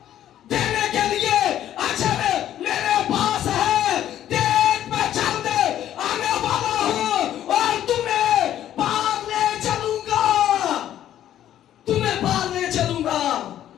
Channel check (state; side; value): quieter; right; 11.6 dB